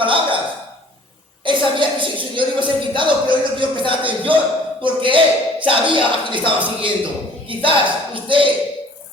Él sabía que su Señor iba a ser quitado, pero él no quiso prestar atención, porque él sabía a quién estaba siguiendo. Quizás usted,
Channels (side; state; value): both; normal; correlation 0.52